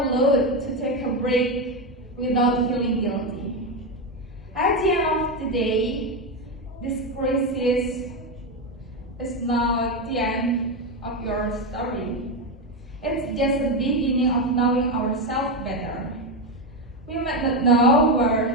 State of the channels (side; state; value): both; normal; correlation 0.11